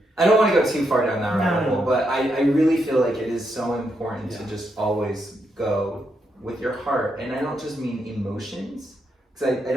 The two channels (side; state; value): both; normal; correlation 0.80